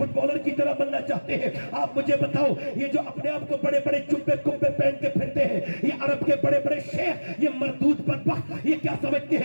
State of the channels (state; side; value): inverted; both; correlation -1.00